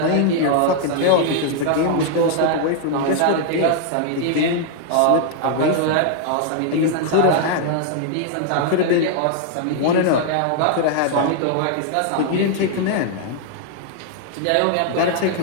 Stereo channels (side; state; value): both; different; correlation -0.01